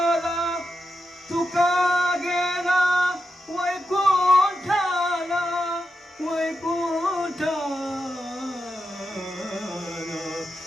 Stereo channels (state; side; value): normal; both; correlation 0.88